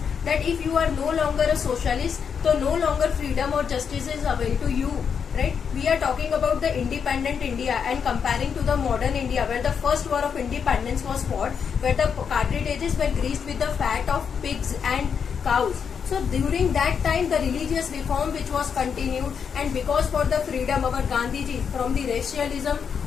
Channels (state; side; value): quieter; right; 6.8 dB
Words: that if you are no longer a socialist, so no longer freedom or justice is available to you, right? We are talking about the independent India and comparing to the modern India, where the first war of independence was fought, where the cartridges were greased with the fat of pigs and cows. So during that time, the religious reform which was continued, and because for the freedom, our Gandhiji, from the racialism